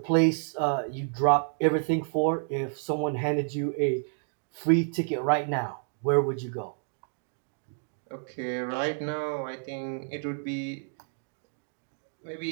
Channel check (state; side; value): silent; left; digital silence